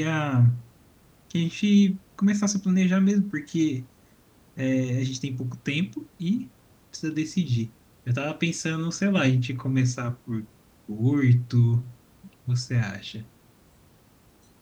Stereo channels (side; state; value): both; identical; correlation 1.00